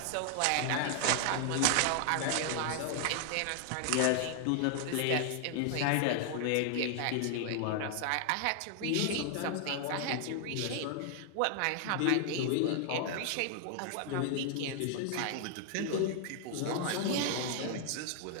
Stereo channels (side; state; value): both; different; correlation 0.00